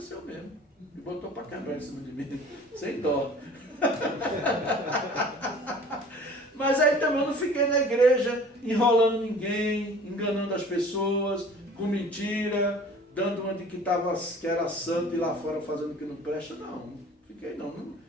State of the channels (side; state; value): both; normal; correlation 0.46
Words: mesmo. E botou para quebrar em cima de mim, sem dó. Mas aí também eu não fiquei na igreja enrolando ninguém, enganando as pessoas, com mentira, dando uma de que era santo e lá fora fazendo o que não presta. Não fiquei não.